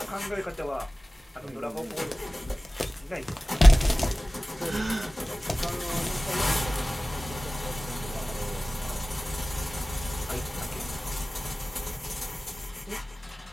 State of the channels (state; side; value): normal; both; correlation 0.97